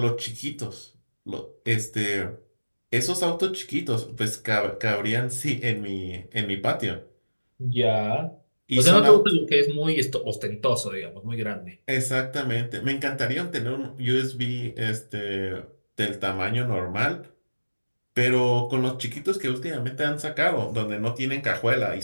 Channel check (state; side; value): inverted; both; correlation -1.00